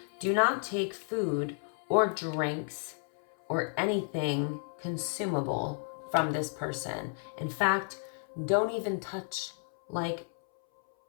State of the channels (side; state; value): right; silent; 56 dB below the other